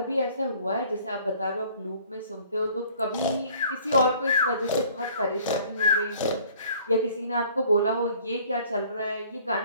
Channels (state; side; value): inverted; both; correlation -0.55